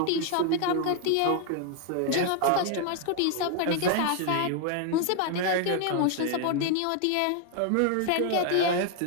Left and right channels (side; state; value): both; different; correlation 0.00